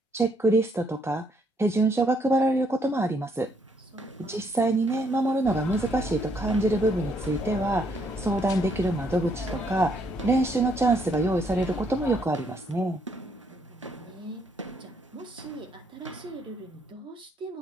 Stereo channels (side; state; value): both; normal; correlation 0.71